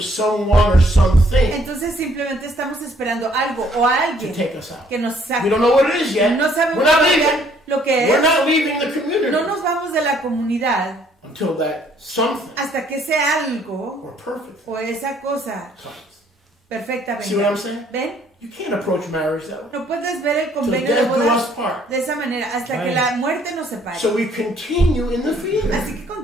someone or something entonces simplemente estamos esperando algo o a to alguien take us out. que nos We saque. don't know what it is yet. No sabemos We're not todavía leaving. lo que We're es. not leaving the community No nos vamos de la comunidad until that something hasta que sea algo or perfect o esa cosa comes. perfecta See what I'm venga. saying? ¿Ven? You can't approach marriage that way. No puedes ver el Till convenio de death do bodas us part. de esa manera hasta que Right. la muerte nos separe. So we continue in the field. Así que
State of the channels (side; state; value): both; normal; correlation 0.63